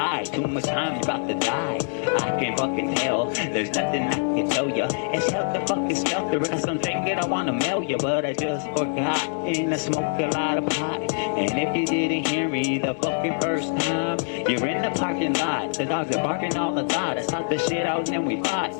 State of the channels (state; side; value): silent; right; 62 dB below the other